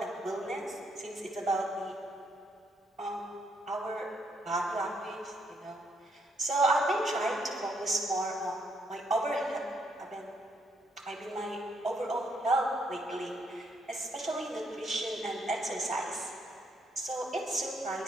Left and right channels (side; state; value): both; normal; correlation 0.73